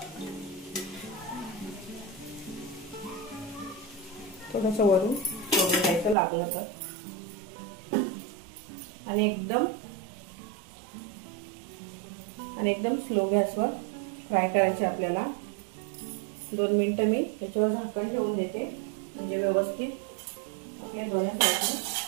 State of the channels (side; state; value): left; drops out; at 6.2 s